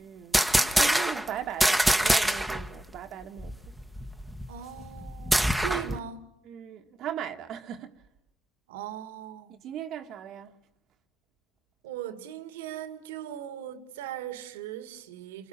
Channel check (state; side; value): normal; both; correlation 0.89